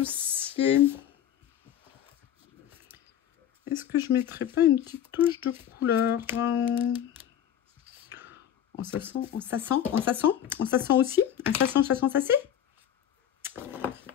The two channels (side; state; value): right; quieter; 10.1 dB